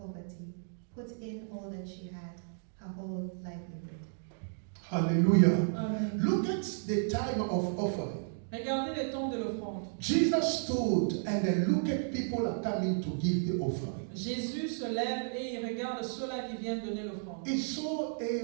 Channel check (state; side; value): silent; left; digital silence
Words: put in all that she had, her whole livelihood. Hallelujah. Amen. Look at the time of offering. Regardez les temps de l'offrande. Jesus stood and then look at people are coming to give the offering. Jésus se lève et il regarde ceux-là qui viennent donner l'offrande. He saw